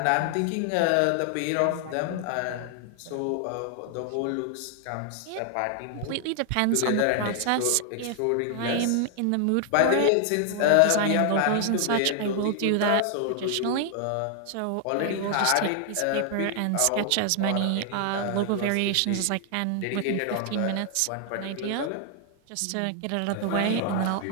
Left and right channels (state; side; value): different; both; correlation 0.00